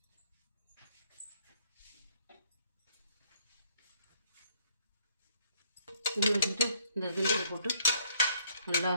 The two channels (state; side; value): inverted; both; correlation -0.66